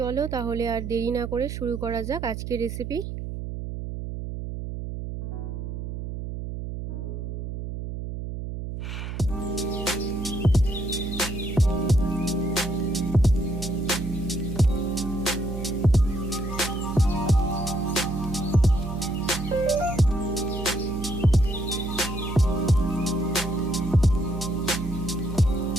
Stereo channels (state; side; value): noise; right; hum, 6 dB below the sound